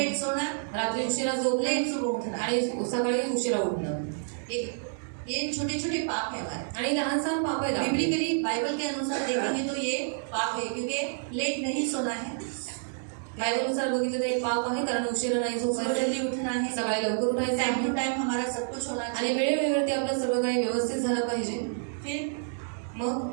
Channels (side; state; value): left; silent; digital silence